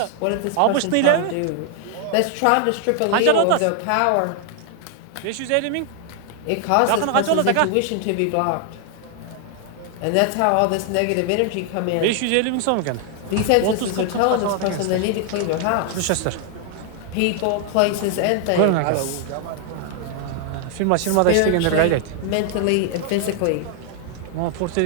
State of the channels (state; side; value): different; both; correlation 0.00